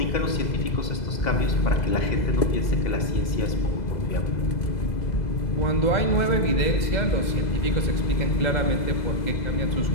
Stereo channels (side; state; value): right; late; 2.0 ms